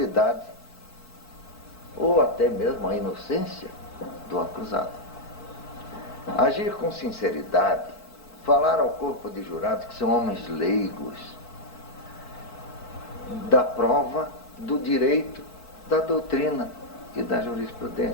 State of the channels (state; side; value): late; right; 4.5 ms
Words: ou até mesmo a inocência do acusado. Agir com sinceridade, falar ao corpo de jurados, que são homens leigos, da prova, do direito, da doutrina e da